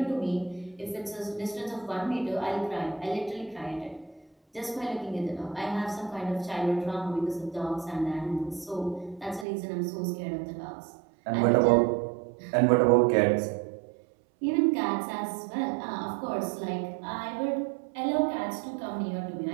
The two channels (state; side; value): drops out; left; at 9.5 s